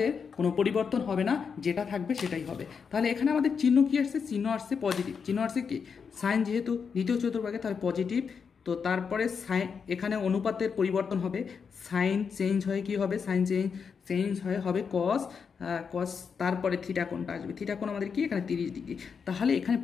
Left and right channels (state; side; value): quieter; right; 6.1 dB